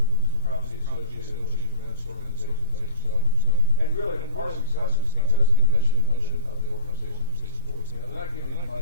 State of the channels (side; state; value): both; inverted; correlation -0.38